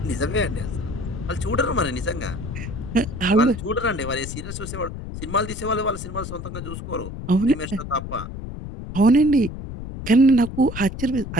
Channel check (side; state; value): left; noise; rumble, 9 dB below the sound